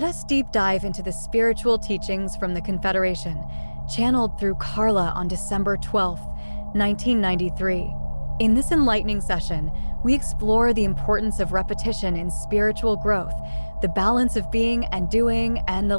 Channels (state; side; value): inverted; both; correlation -1.00